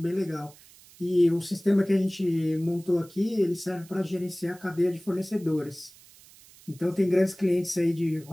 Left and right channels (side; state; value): right; noise; hiss, 24 dB below the sound